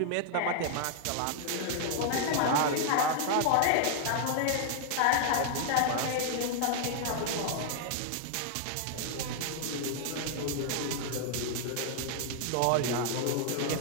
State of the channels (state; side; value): different; both; correlation -0.01